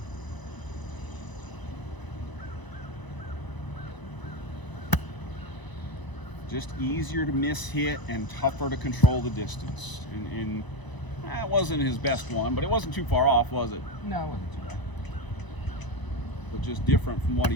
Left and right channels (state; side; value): late; right; 1.0 ms